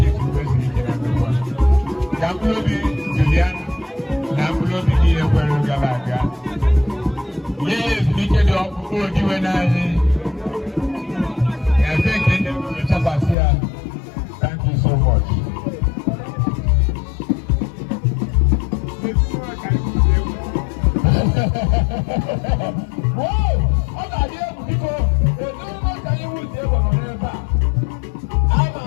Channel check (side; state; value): right; drops out; at 13.4 s